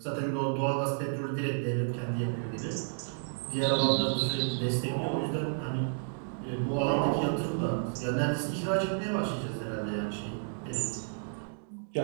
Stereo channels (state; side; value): silent; left; digital silence